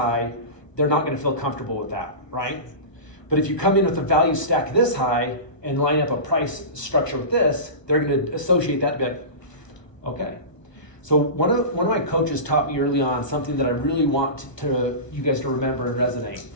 they're not gonna feel comfortable with that, right? But if you come in with a value stack this high and line up a price structure with this, they're gonna associate that and be like, okay. So one of my coaches taught me early on something that I really want you guys to remember and resonate.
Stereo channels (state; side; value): late; right; 1.0 ms